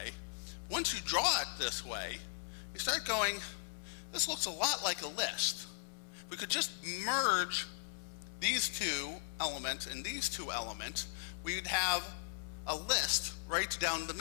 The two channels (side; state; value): right; silent; 52 dB below the other